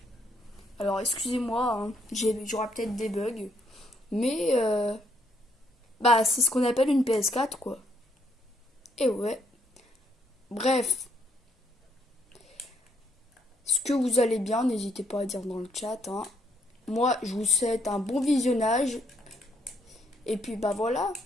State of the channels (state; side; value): normal; both; correlation 0.72